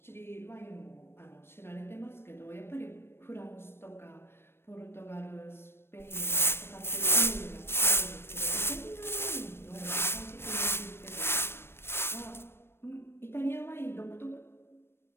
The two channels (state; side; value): late; right; 0.12 ms